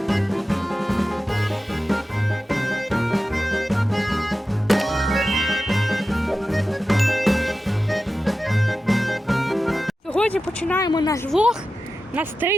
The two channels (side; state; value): both; normal; correlation 0.93